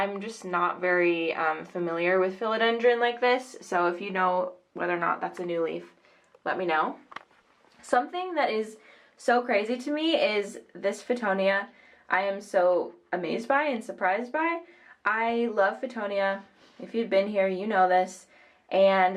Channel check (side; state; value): both; identical; correlation 1.00